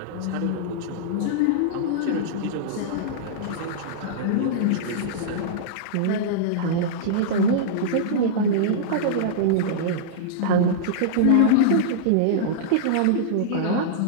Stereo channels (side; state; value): both; different; correlation -0.02